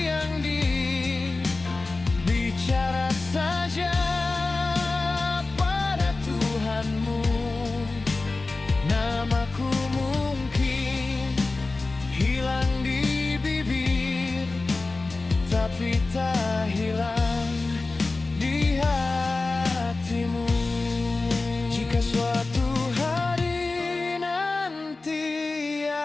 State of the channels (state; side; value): quieter; right; 3.5 dB